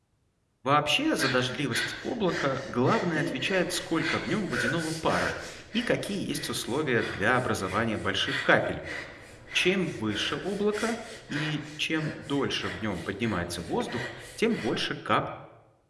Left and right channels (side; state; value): both; identical; correlation 1.00